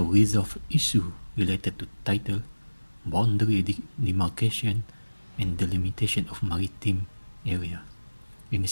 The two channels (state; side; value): inverted; both; correlation -1.00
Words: resolve issues related to title, boundary demarcation, and delimitation of maritime area in a